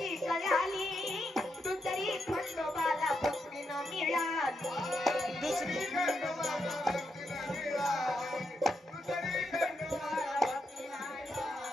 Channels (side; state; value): both; normal; correlation 0.82